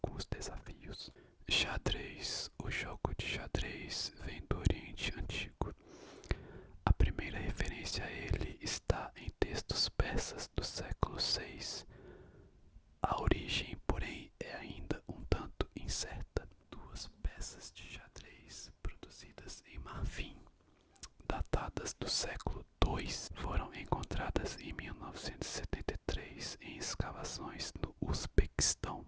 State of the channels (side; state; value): both; identical; correlation 1.00